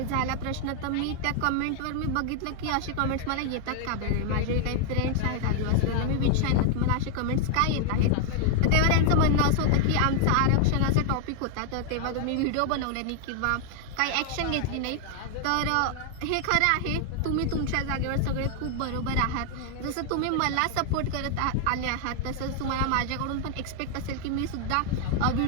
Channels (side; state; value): both; different; correlation 0.00